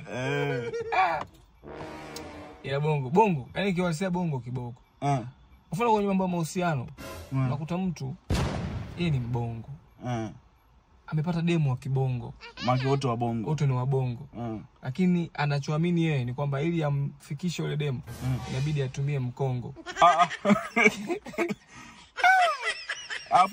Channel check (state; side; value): identical; both; correlation 1.00